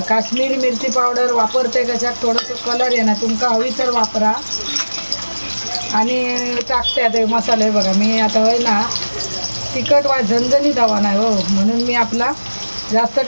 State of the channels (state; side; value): inverted; both; correlation -1.00